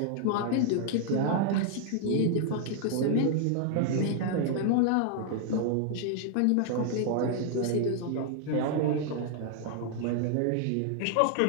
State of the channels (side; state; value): both; different; correlation 0.00